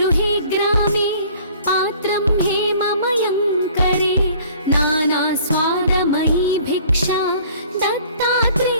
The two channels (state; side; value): inverted; both; correlation -0.52